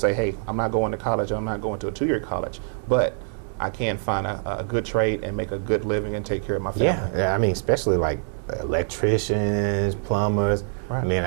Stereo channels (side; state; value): left; silent; 62 dB below the other